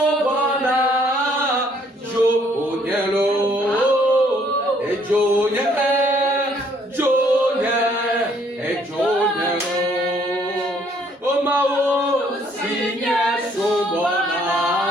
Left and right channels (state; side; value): normal; both; correlation 0.65